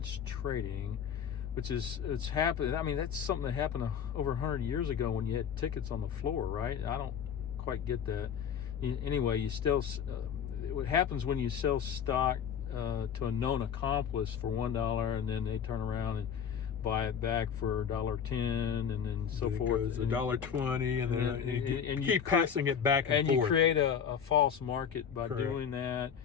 trading, which it's happened. I mean, that's something that happened over 100 years ago when you had tickets on the floor, right? I don't quite get that. Anyway, you still what happens when you sell stock to a known accomplice for $1, and then they turn around and buy it back for $1.10, and then so forth. It goes $1.20, and then you keep passing it back and forth. And you create a false market by Correct. doing that.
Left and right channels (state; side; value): quieter; right; 7.7 dB